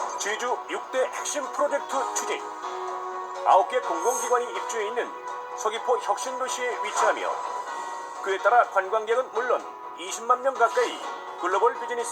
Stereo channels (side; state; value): both; identical; correlation 1.00